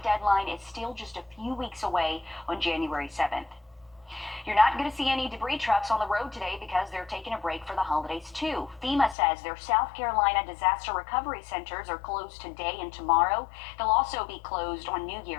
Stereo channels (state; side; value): drops out; right; at 9.2 s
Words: deadline is still just a few weeks away on January 7th. You're not going to see any debris trucks on the road today because they're taking a break for the holidays too. FEMA says their South Carolina disaster recovery centers are closed today and tomorrow. They'll also be closed on New